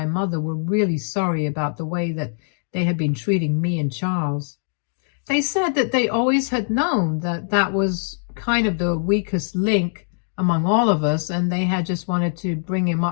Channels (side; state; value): right; silent; digital silence